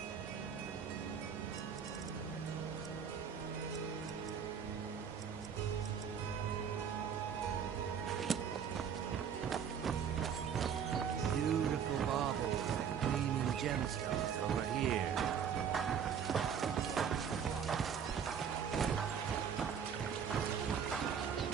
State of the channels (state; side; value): quieter; left; 7.6 dB